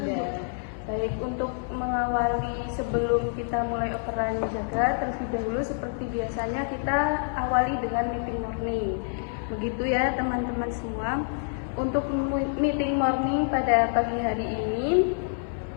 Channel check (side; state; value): right; silent; 60 dB below the other